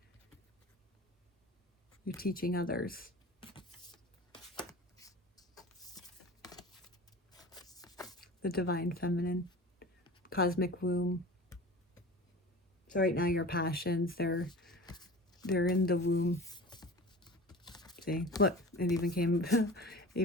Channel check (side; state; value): both; normal; correlation 0.37